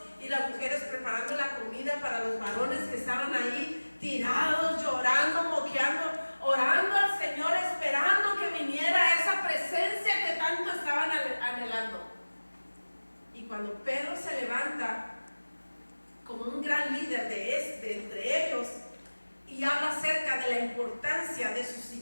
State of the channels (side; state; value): both; inverted; correlation -1.00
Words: y las mujeres preparando la comida para los varones que estaban ahí tirados, llorando, moqueando, orando al Señor, esperando que viniera esa presencia que tanto estaban anhelando. Y cuando Pedro se levanta como un gran líder de entre ellos y habla acerca de la importancia de